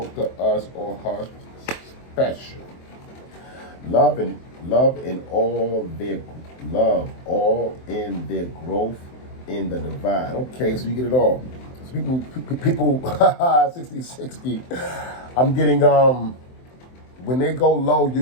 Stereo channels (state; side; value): late; right; 23 ms